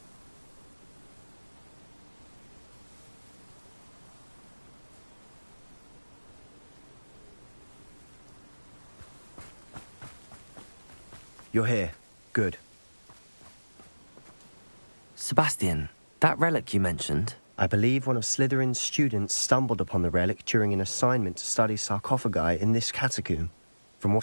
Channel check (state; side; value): inverted; both; correlation -1.00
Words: You're here. Good. Sebastian, that relic you mentioned? I believe one of Slytherin's students stumbled upon the relic during an assignment to study sarcophagi in this catacomb. From